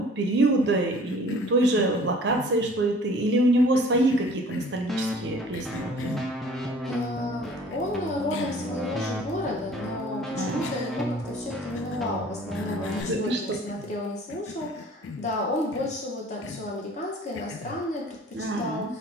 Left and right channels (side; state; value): both; normal; correlation 0.50